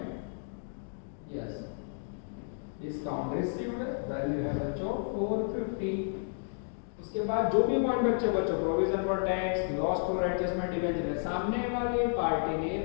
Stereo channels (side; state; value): right; silent; digital silence